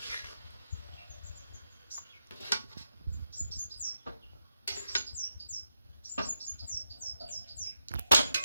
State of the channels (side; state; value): both; inverted; correlation -0.85